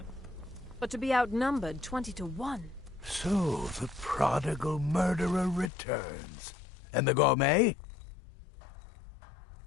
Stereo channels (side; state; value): right; drops out; at 5.7 s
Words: But to be outnumbered 20 to 1. So, the prodigal murderer returns. And the gourmet?